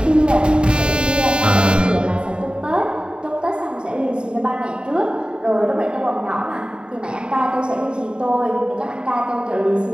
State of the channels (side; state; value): left; late; 0.050 ms